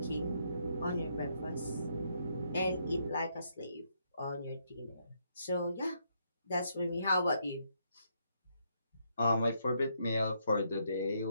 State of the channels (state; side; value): inverted; both; correlation -0.75